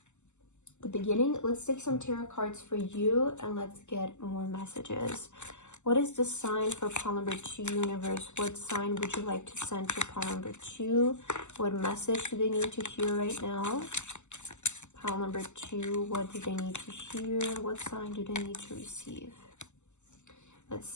the beginning. Let's take some tarot cards for you and let's get more messages. What is the sign for pile number 2 universe? What sign would you like to send to pile number 2? What message do they need to hear right now? Pile number 2, what do they need to hear? What sign do they need to receive? Let's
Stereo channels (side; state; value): right; late; 0.83 ms